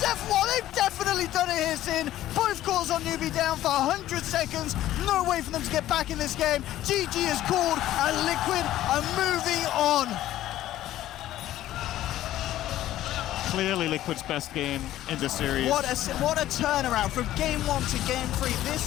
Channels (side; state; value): right; quieter; 13.8 dB